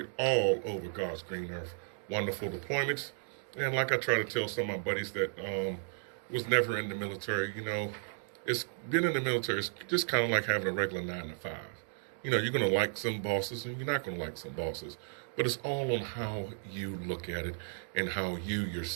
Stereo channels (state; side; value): silent; left; digital silence